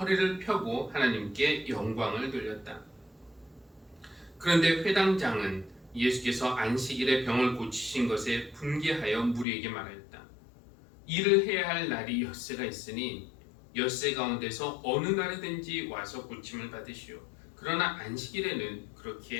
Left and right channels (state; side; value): drops out; right; at 9.5 s